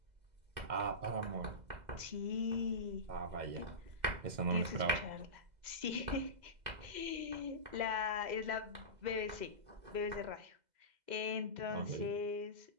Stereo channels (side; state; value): left; late; 2.0 ms